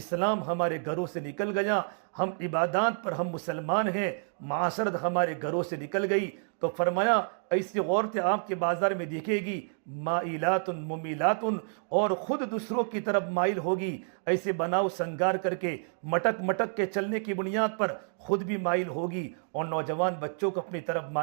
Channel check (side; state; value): left; silent; 58 dB below the other